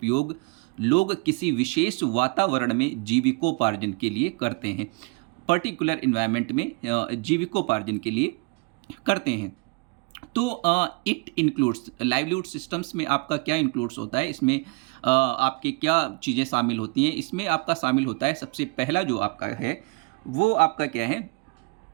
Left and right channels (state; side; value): quieter; left; 29.5 dB